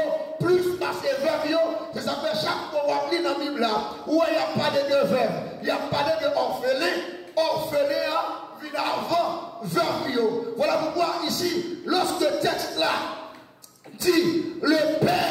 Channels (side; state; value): both; identical; correlation 1.00